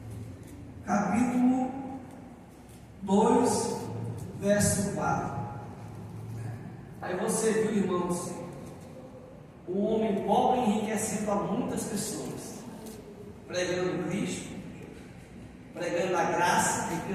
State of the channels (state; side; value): identical; both; correlation 1.00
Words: capítulo 2, verso 4. Aí você viu, irmãos, o homem pobre enriquecendo a muitas pessoas, pregando Cristo, pregando a graça,